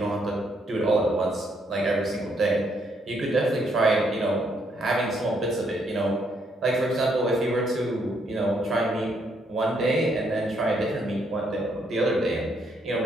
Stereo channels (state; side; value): normal; both; correlation 0.72